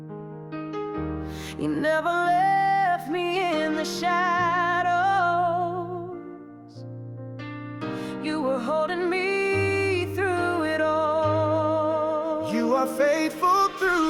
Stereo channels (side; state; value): both; identical; correlation 1.00